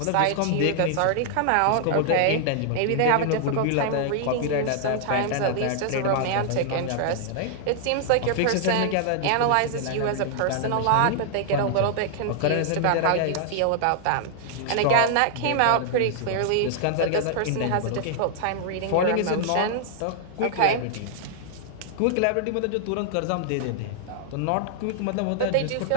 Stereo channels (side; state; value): both; different; correlation 0.00